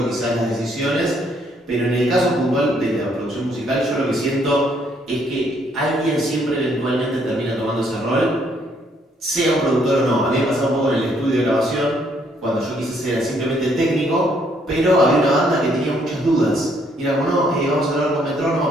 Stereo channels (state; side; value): normal; both; correlation 0.69